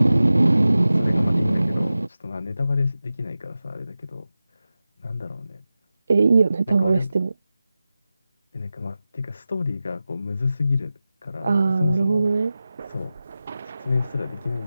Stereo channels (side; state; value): both; inverted; correlation -0.94